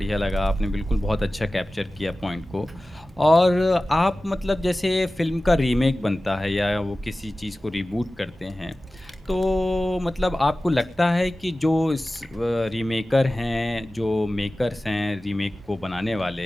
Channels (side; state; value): both; normal; correlation 0.96